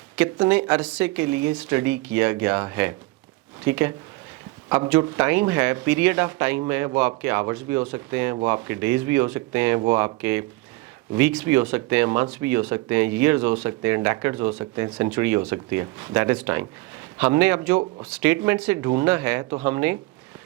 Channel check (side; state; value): left; quieter; 21.7 dB